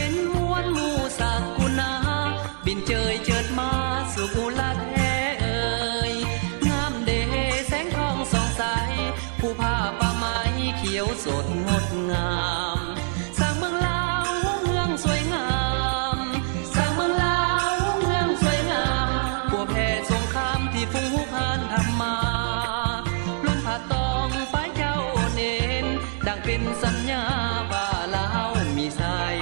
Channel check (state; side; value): silent; left; 62 dB below the other